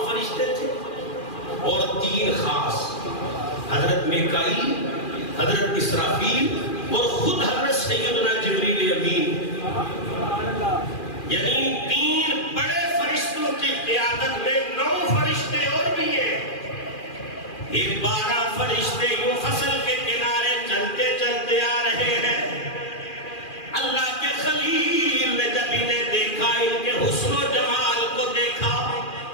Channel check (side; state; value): right; late; 2.4 ms